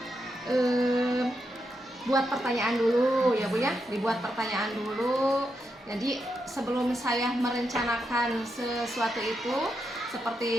buat pertanyaan dulu ya Bu ya, dibuat pertanyaan dulu. Jadi sebelum saya merencanakan sesuatu itu,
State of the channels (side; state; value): both; normal; correlation 0.84